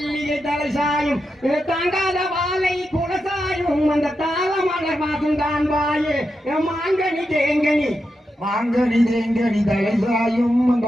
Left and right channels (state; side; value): normal; both; correlation 0.87